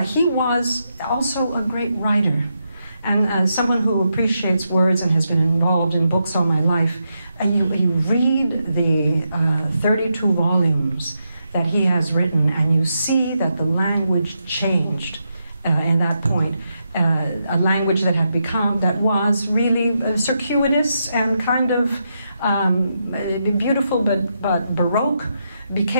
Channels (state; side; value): inverted; both; correlation -0.83